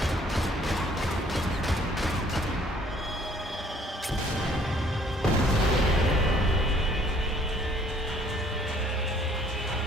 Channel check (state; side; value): normal; both; correlation 0.60